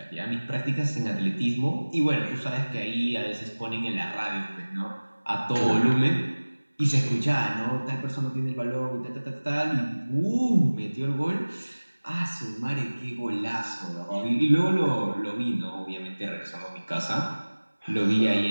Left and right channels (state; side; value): inverted; both; correlation -1.00